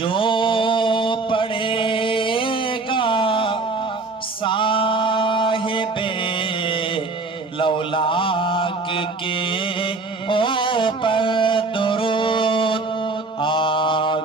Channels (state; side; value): quieter; left; 3.6 dB